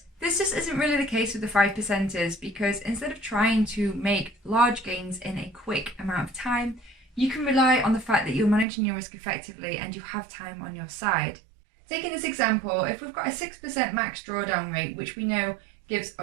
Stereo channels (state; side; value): drops out; left; at 8.7 s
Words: this just isn't really the case with the 5%ers, because instead of trying to make large gains in a quick amount of time, you can rely on the fact that you're managing your risk effectively and you have time on your side. Taking this example, if we've got a 6% max drawdown rate, which we know gives